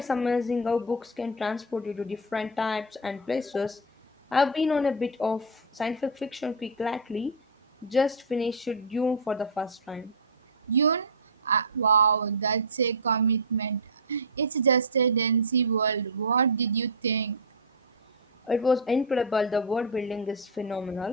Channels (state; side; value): normal; both; correlation -0.02